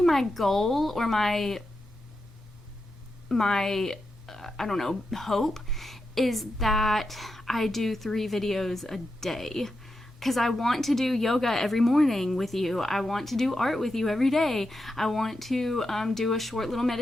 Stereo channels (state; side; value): normal; both; correlation 0.87